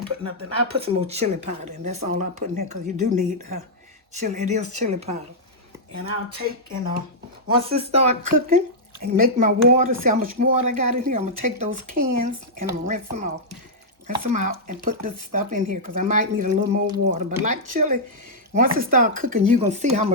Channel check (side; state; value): both; normal; correlation -0.08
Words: put nothing. I'll put some more chili powder in. That's all I put in here, because you do need chili. It is chili powder. And I'll take, and once it starts cooking, and make my water. See how much water I got in here? I'm going to take those cans, and I'm going to rinse them off. Rinse them out and put this stuff in here, because I might need a little more water. But like chili, once it starts cooking, you're going to see how